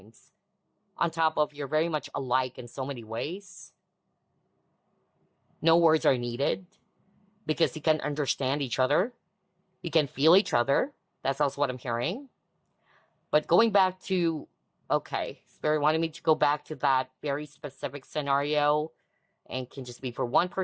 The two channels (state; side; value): identical; both; correlation 1.00